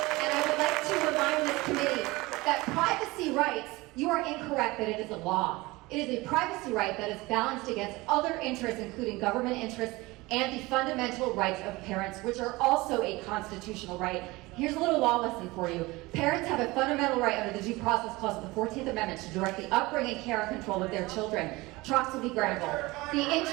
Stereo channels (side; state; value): left; quieter; 21.6 dB